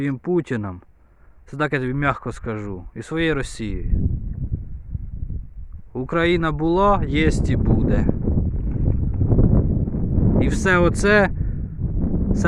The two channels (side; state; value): both; identical; correlation 1.00